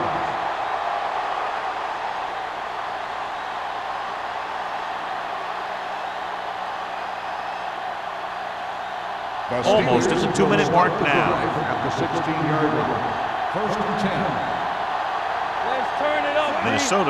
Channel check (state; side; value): identical; both; correlation 1.00